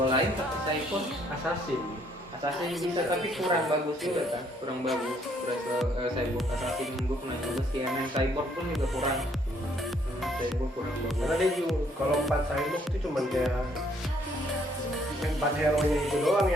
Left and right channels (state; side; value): normal; both; correlation 0.66